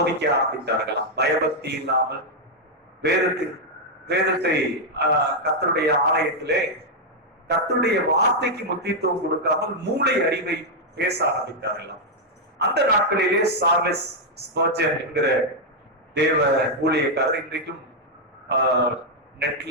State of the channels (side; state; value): both; normal; correlation -0.02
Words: ஆரம்பித்தார்களாம். பயபக்தி இல்லாமல் வேதத்தை கர்த்தருடைய ஆலயத்திலே கர்த்தருடைய வார்த்தைக்கு முக்கியத்துவம் கொடுக்காமல் மூளை அறிவை பேச ஆரம்பித்தார்களாம். அந்த நாட்களிலே சார்லஸ் ஸ்பர்ஜன் என்கிற தேவ ஊழியக்காரர் இன்றைக்கும்